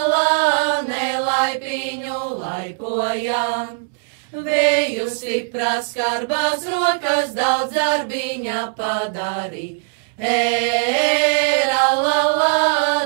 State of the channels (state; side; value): silent; left; digital silence